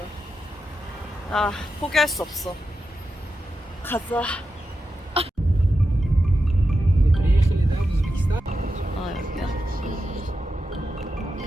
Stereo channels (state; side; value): normal; both; correlation 0.89